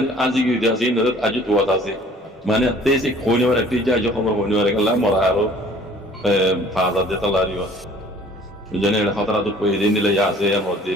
আজি গিয়ে আছে আজি তোয়াত আছে মানে তে সে খোনিবার একটি যা খবর খোনিবার গেল মরা আরো 5000 দিতে লারিও জানে খতরা দুপাইতে নিলে আছে মসজিদে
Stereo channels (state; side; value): normal; both; correlation 0.53